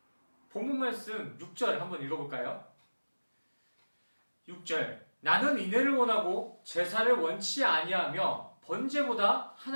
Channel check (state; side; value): inverted; both; correlation -1.00